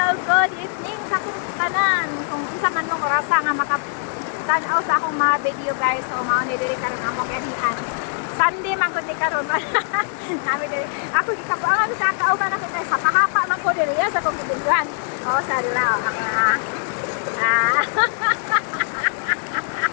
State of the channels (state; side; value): silent; right; digital silence